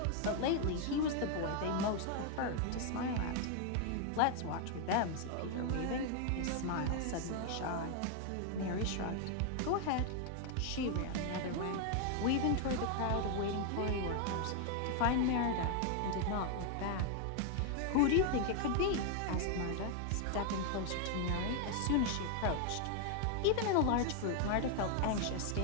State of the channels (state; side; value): different; both; correlation 0.00